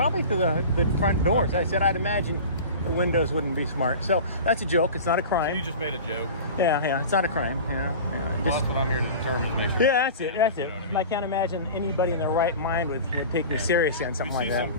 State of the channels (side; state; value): both; inverted; correlation -0.35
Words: through the front doors. I said I'd imagine the windows wouldn't be smart. So that's a joke. It's not a crime. So you just made a joke. Yeah. It's not a crime. Yeah. Well, that's what I'm here to determine, to make sure. Yeah, that's it. You know what I mean? I can't imagine anybody in their right mind would take me seriously on something like that. You see